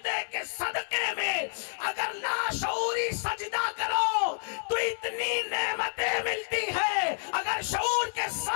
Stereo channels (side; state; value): right; silent; digital silence